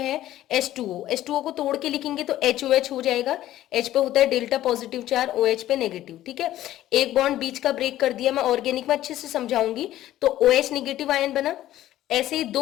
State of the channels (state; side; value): quieter; right; 13.8 dB